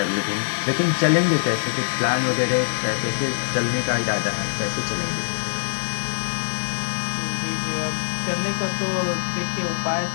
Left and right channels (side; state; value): right; silent; digital silence